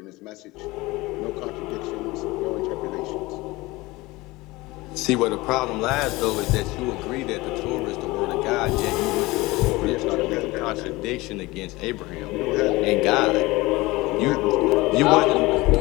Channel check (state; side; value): quieter; right; 21.1 dB